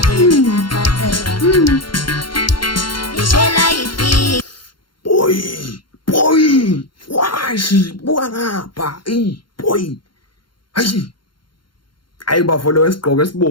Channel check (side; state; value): right; late; 0.72 ms